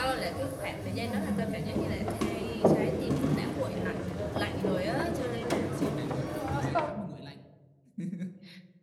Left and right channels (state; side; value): identical; both; correlation 1.00